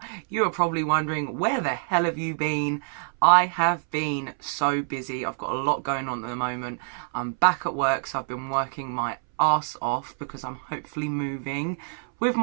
You are probably wondering, where the hell have you been? I have been so busy. I've got a lot going on at the moment. I'm back at work, so I've been working my ass off because I'm hopefully moving with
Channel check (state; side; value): silent; left; 61 dB below the other